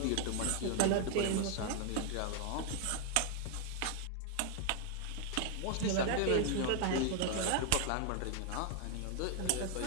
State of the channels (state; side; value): different; both; correlation 0.00